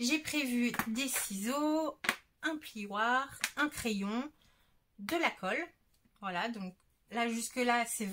J'ai prévu des ciseaux, un plioir, un crayon, de la colle. Voilà, donc là, jusque-là, c'est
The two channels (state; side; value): identical; both; correlation 1.00